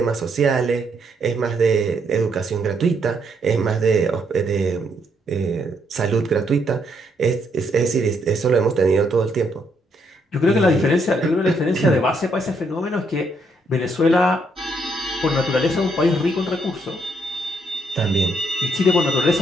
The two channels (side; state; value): both; normal; correlation 0.73